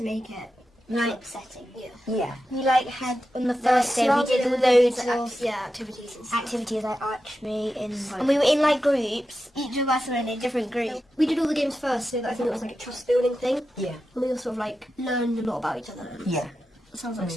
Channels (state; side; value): normal; both; correlation 0.90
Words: make it like upsetting. Yeah. We like had on the first day we did loads of activities like archery and we were in like groups. Each of us were in a different group. We did all the games first, so that I think it was like a trust building thing. Yeah. And we all sort of like learned a lot about each other. Yeah. It sounds like